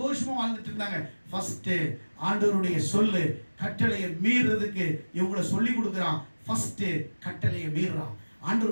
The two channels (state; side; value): inverted; both; correlation -1.00